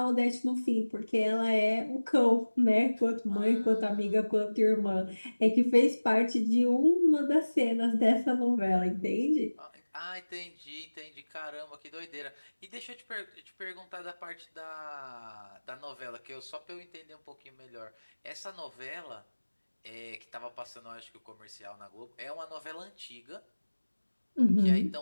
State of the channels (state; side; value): inverted; both; correlation -1.00